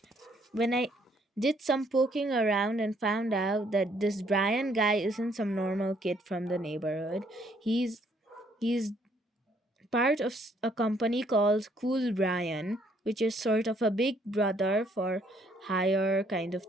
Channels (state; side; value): normal; both; correlation 0.66